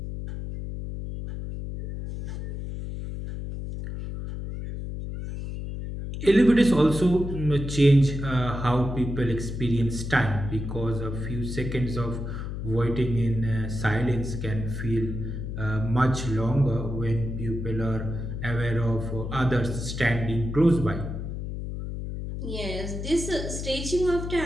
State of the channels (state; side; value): noise; left; hum, 6 dB below the sound